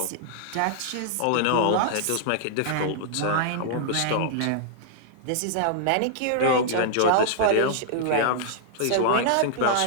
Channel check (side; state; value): both; different; correlation -0.01